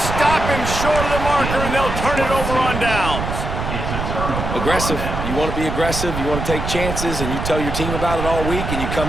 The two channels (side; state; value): right; noise; rumble, 4 dB below the sound